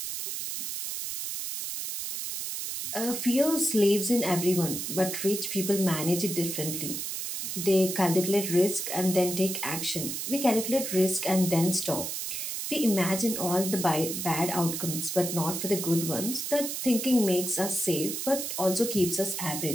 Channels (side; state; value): right; noise; hiss, 4 dB below the sound